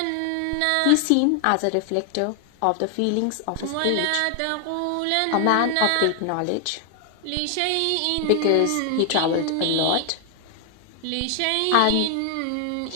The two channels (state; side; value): different; both; correlation 0.00